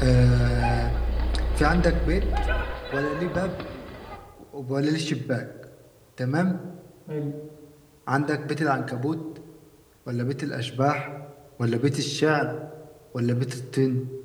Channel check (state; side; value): identical; both; correlation 1.00